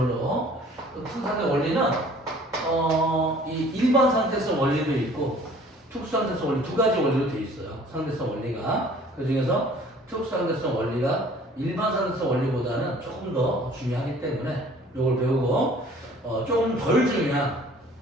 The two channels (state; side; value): normal; both; correlation 0.52